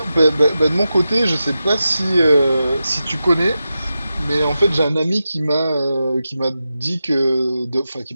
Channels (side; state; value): both; inverted; correlation -0.91